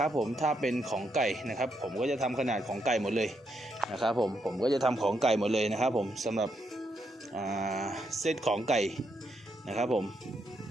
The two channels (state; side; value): normal; both; correlation 0.79